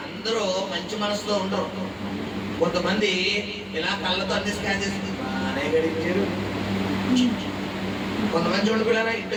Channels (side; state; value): both; identical; correlation 1.00